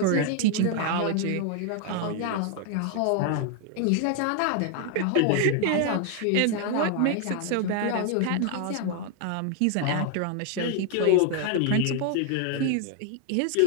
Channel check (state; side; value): different; both; correlation 0.00